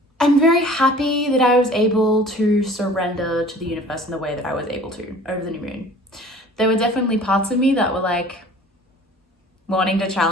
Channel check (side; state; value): both; normal; correlation 0.47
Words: I'm very happy that I was able to surrender to the universe in the way that I was able to over the new moon. There were definitely parts of me that were like wanting to